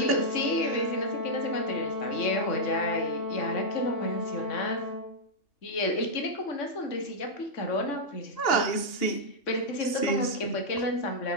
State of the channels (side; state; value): right; late; 2.9 ms